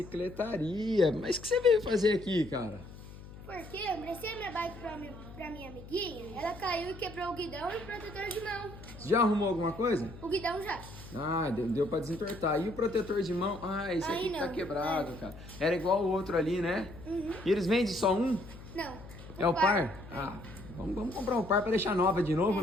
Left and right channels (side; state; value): left; noise; hum, 16 dB below the sound